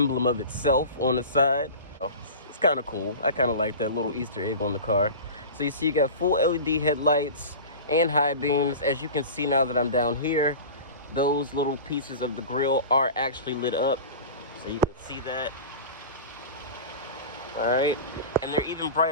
of itself on the side. Oh, it's kind of cool. I kind of like that little Easter egg on the car. So you see you got full LED headlights and high beams. As you can see now that I'm down here, those little pieces of the grille are actually lit up, so you can see that. All right, and they're even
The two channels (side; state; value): both; inverted; correlation -0.33